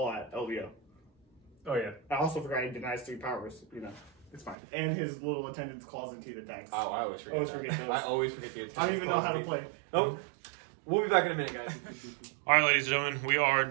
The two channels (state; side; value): drops out; left; at 4.5 s